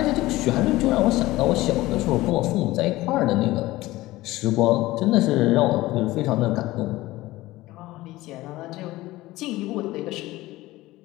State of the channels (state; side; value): quieter; right; 18.0 dB